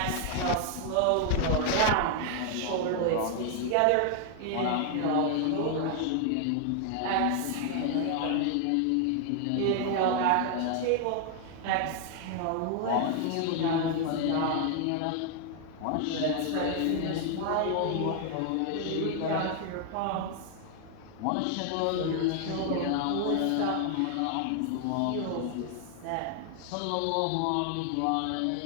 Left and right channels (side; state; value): both; different; correlation 0.00